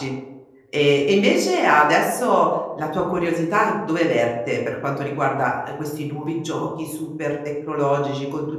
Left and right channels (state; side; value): identical; both; correlation 1.00